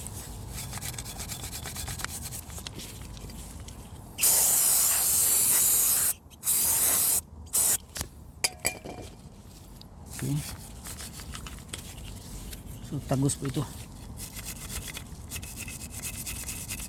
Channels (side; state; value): both; identical; correlation 1.00